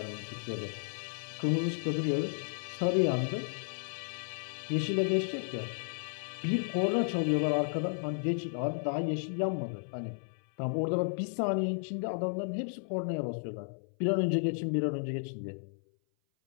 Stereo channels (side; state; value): right; silent; 56 dB below the other